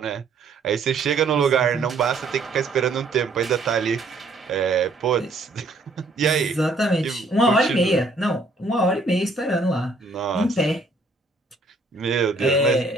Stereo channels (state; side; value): quieter; left; 3.2 dB